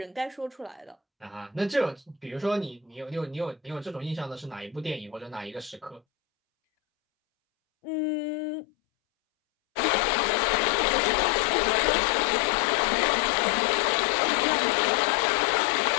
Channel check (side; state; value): right; drops out; at 6.0 s